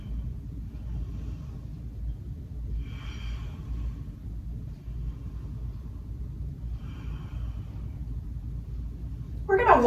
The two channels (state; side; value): identical; both; correlation 1.00